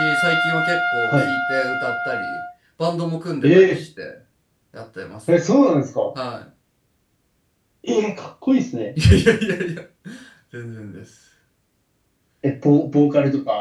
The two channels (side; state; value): both; identical; correlation 1.00